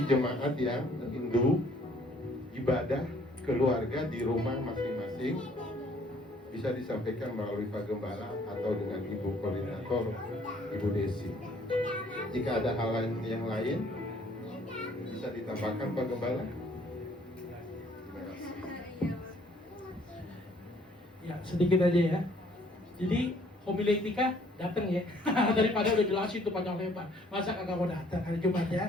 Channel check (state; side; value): normal; both; correlation 0.61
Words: jemaat yang rindu ibadah keluarga di rumah masing-masing bisa disampaikan melalui Pak Gembala atau dengan Ibu Koordinator, Ibu Desi. Jika ada hal lain yang lain, bisa ditambahkan Pak Gembala. Terima kasih. Ya, sedikit aja ya. Jadi homiletika datang ya. Daripada udah jelasin tuh panjang lebar. Masa kagak mau datang hari Jumat